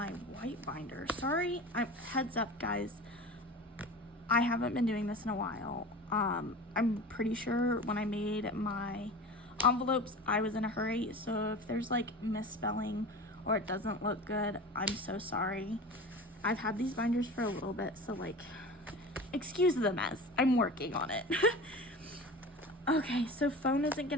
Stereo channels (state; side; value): normal; both; correlation 0.34